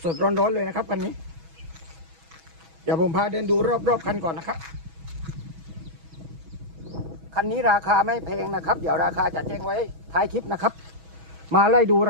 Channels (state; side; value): late; left; 6.2 ms